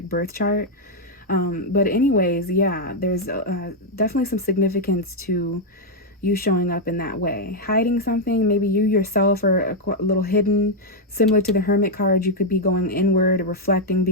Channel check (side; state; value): both; normal; correlation -0.01